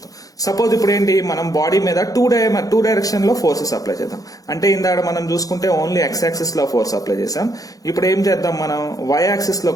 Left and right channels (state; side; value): late; right; 0.17 ms